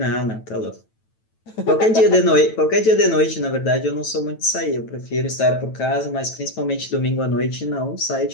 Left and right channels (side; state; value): right; late; 9.1 ms